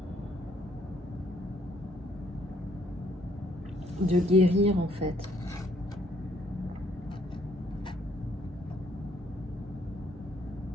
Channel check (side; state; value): both; normal; correlation 0.67